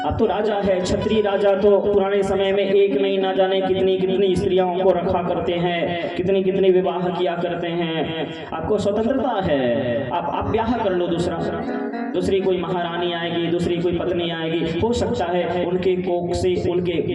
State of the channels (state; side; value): identical; both; correlation 1.00